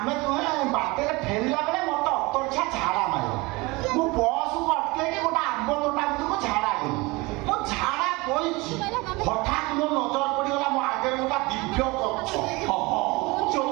ଦୁହେଁ ବାଟରେ ଫେରିଲା ବେଳେ ମତେ ଅତର୍ଚ୍ଛା ଝାଡ଼ା ମାରିବ। ମୁଁ ବସକୁ ଅଟକେଇକି ଗୋଟେ ଆମ୍ବ ତୋଟା ଭିତରକୁ ଝାଡ଼ା ଗଲି। ମୁଁ ଝାଡ଼ା ବଇଛି, ହଠାତ୍ ମୋ ନଜର ପଡ଼ିଗଲା ମୋ ଆଗରେ ଗୋଟେ ଦିବ୍ୟ ଗଛ।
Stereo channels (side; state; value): left; quieter; 24.0 dB